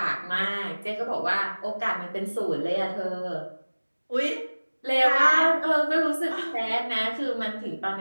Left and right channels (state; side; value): inverted; both; correlation -1.00